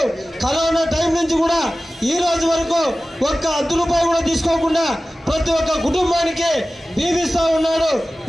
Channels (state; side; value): normal; both; correlation 0.96